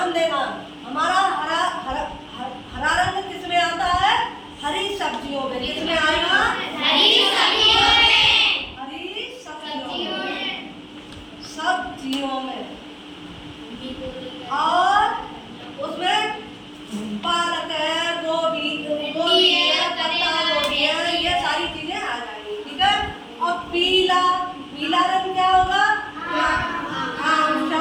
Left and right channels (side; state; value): both; identical; correlation 1.00